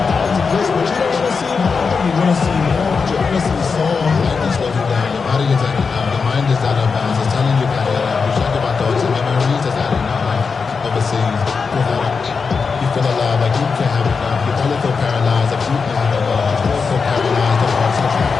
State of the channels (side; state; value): right; quieter; 5.1 dB